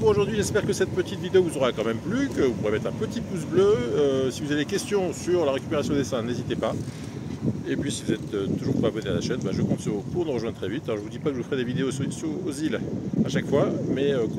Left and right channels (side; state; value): both; identical; correlation 1.00